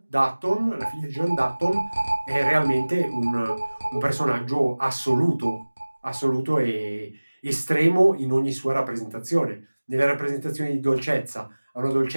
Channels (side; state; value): both; inverted; correlation -1.00